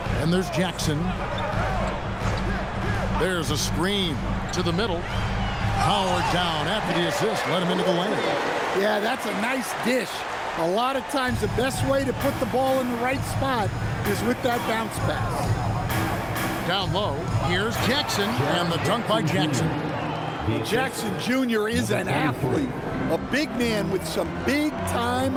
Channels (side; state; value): both; identical; correlation 1.00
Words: And there's Jackson. There's a screen to the middle. Howard down after the assist. Let him into the lane. Yeah, that's a nice dish. A lot of times the best way to put the ball in the right spot is with that bounce pass. Down low, here's Jackson, and the dunk by Jackson. Jackson Jr. is an athlete. A big man with some big-time